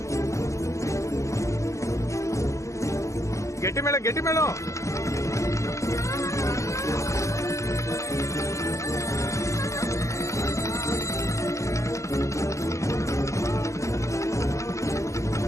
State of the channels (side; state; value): right; late; 0.15 ms